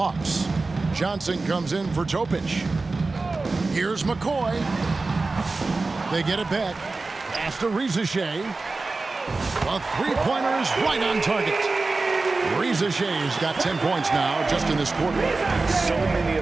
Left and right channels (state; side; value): quieter; left; 3.6 dB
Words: Johnson comes in for Topic. Here's McCoy. They get it back. Pass to Reza Shea. A three-pointer is right on target. Reza Shea's got 10 points now just in this quarter. So many